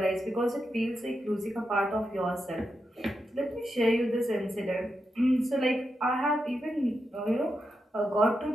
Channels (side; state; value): both; normal; correlation 0.86